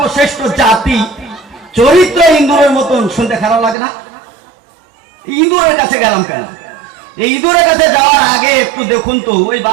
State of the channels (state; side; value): drops out; left; at 3.8 s